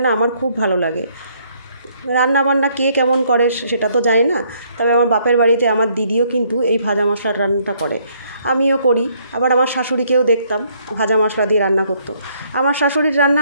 না আমার খুব ভালো লাগে। রান্না বান্না কে কেমন করে সেটা তো জানি না, তবে আমার বাপের বাড়িতে আমার দিদিও কিন্তু এই ভাজা মশলার রান্নাটা করে, আমিও করি। আবার আমার শাশুড়িকেও দেখতাম ভাজা মশলা দিয়ে রান্না করতো। আমার শাশুড়ির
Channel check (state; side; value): inverted; both; correlation -0.67